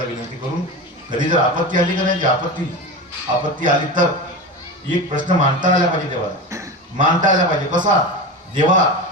विनंती करून. कधी जर आपत्ती आली का नाही, आपत्ती आली तर एक प्रश्न मांडता आला पाहिजे देवाला मानता आला पाहिजे. कसा? देवा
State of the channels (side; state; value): both; normal; correlation 0.25